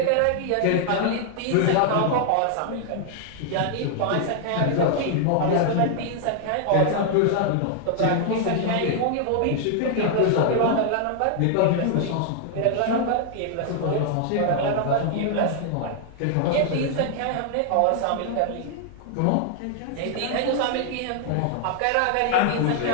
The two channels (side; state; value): both; different; correlation 0.00